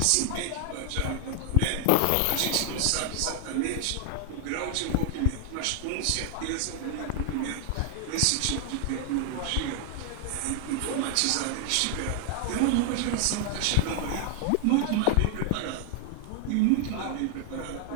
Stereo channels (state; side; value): different; both; correlation 0.00